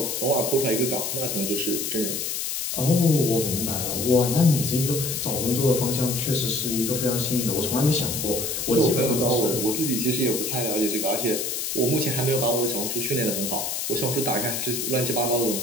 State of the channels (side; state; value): left; noise; hiss, 2 dB below the sound